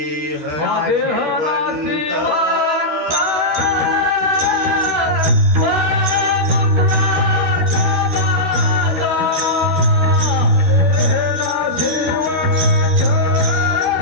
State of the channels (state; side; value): late; left; 13 ms